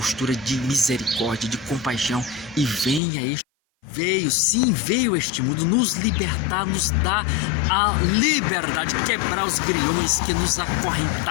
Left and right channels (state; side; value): drops out; right; at 3.0 s